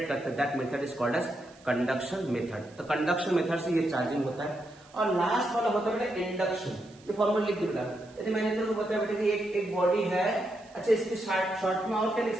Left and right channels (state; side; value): noise; right; hiss, 26 dB below the sound